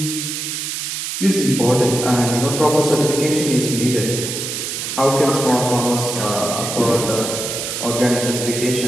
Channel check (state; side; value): noise; right; hiss, 4 dB below the sound